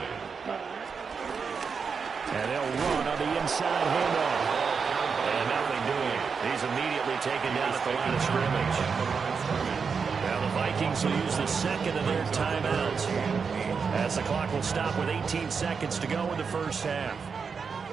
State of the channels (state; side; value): quieter; left; 5.7 dB